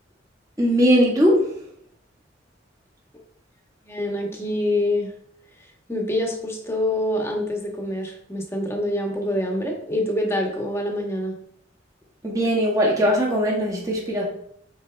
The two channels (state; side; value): normal; both; correlation 0.56